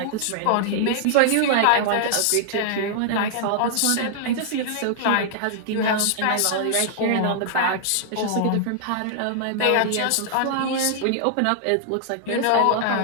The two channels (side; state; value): both; different; correlation -0.01